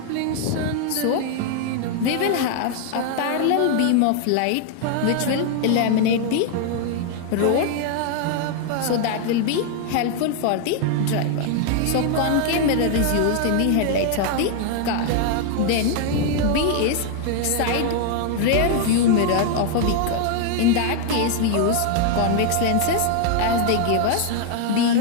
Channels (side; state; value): both; different; correlation 0.00